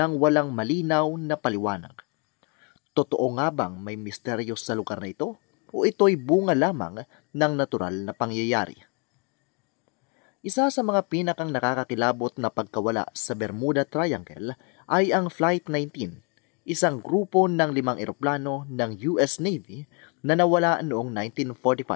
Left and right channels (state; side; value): quieter; right; 33.9 dB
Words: walang malinaw na paliwanag. Totoo nga bang may misteryo sa lugar na ito o ito'y bunga lamang ng natural na pangyayari? Isa sa mga pinakang nakakakilabot na pagkawala sa Bermuda Triangle ay ang Flight 19, isang grupo ng 5 eroplano ng US Navy na nawala noong